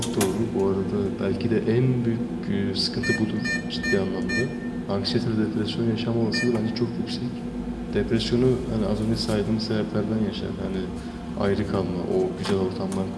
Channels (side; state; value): both; identical; correlation 1.00